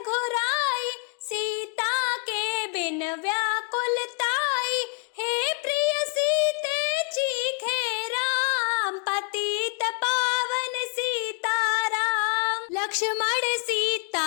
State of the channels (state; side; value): quieter; right; 36.8 dB